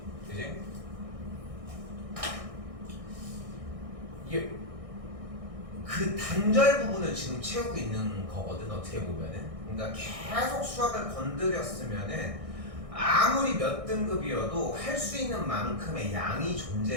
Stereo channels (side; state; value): left; late; 1.6 ms